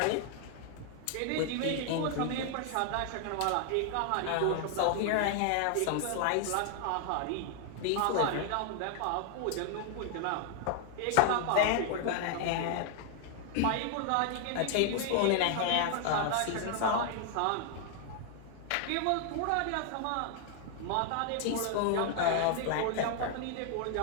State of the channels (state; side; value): different; both; correlation 0.00